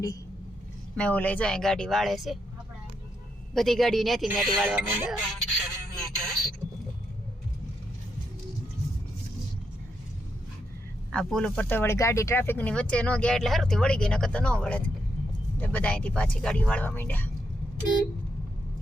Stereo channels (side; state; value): both; normal; correlation 0.81